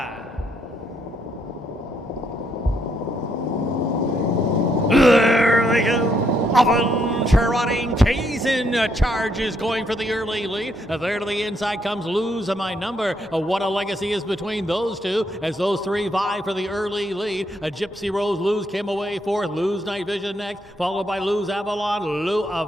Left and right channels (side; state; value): both; normal; correlation 0.74